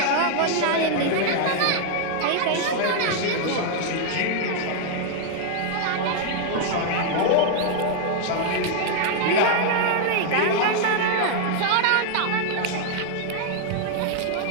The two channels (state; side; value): different; both; correlation -0.01